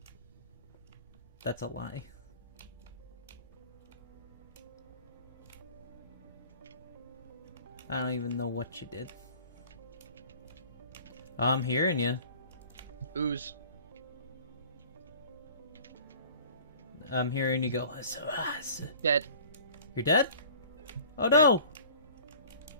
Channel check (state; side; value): inverted; both; correlation -0.46